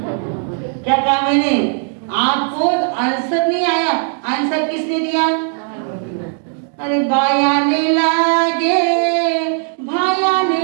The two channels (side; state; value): left; silent; 55 dB below the other